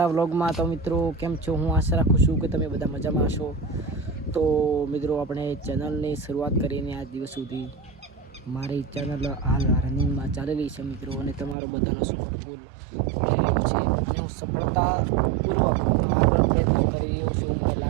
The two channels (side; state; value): left; drops out; at 11.6 s